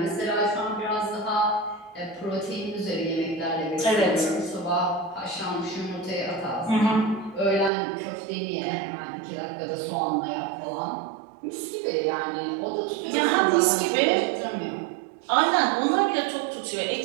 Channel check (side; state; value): left; drops out; at 7.7 s